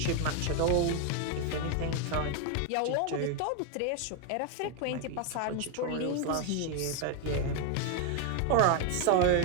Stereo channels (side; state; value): both; different; correlation 0.01